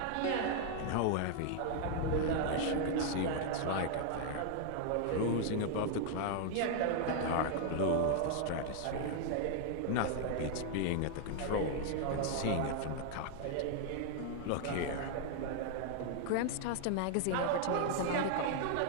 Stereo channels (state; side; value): different; both; correlation 0.00